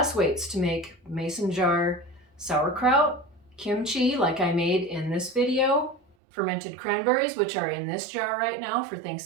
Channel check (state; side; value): drops out; left; at 6.2 s